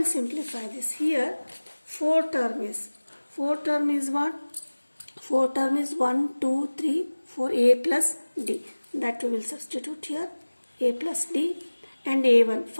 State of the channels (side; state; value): both; inverted; correlation -1.00